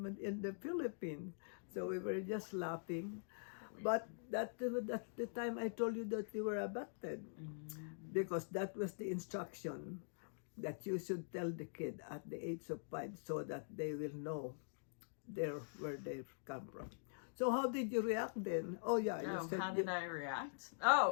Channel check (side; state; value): right; silent; digital silence